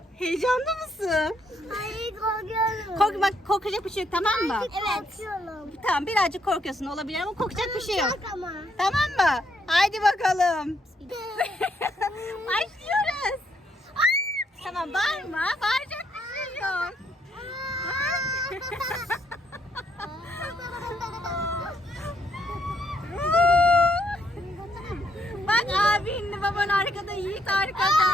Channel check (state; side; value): normal; both; correlation 0.73